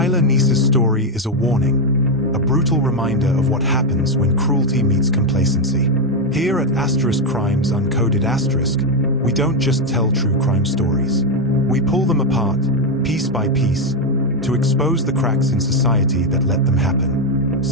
Neese's story is a warning, a brutal reminder of what happens when cruelty meets complacency. Here at Crimes Uncoded, we don't just tell true crime stories. We pull them apart, piece by piece, to expose the cracks in society that let them happen.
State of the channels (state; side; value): normal; both; correlation 0.05